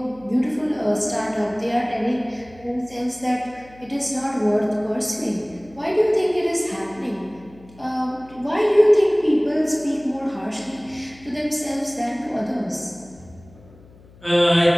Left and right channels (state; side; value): noise; left; hum, 24 dB below the sound